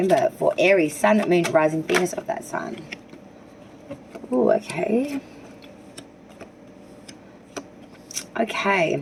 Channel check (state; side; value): identical; both; correlation 1.00